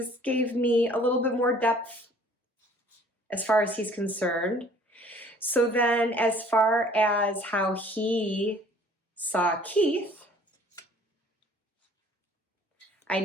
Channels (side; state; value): both; normal; correlation 0.54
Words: gave me a little bit more depth as far as he's concerned. So then as far as how he saw Keith, I